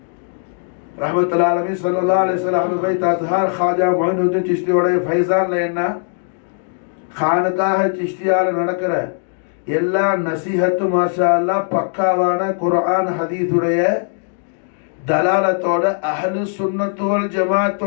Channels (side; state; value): right; silent; digital silence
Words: ரஹ்மத்துல்லாஹி அலைஹி ஸல்லல்லாஹு அலைஹி வஸல்லம் பை தத்ஹார் खाजा மொயினுddin சிஷ்தியோட ஃபைசான்ல என்ன खानकाह சிஷ்தியால நடக்கிற எல்லா நசீஹத்து மாஷா அல்லாஹ் பக்காவான குர்ஆன் ஹதீஸுடைய தலாலத்தோட அஹ்லு சுன்னத் வல்